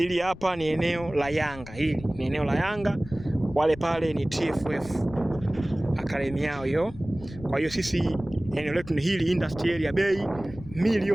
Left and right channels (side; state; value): left; noise; rumble, 16 dB below the sound